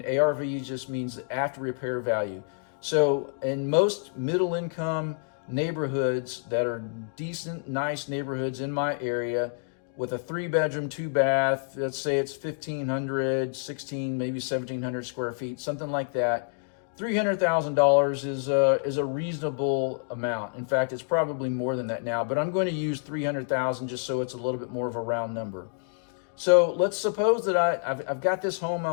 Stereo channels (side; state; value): right; silent; digital silence